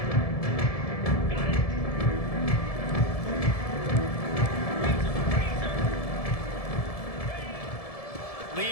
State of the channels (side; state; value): right; late; 1.7 ms